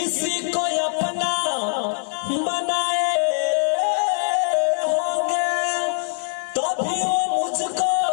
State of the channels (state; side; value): silent; right; digital silence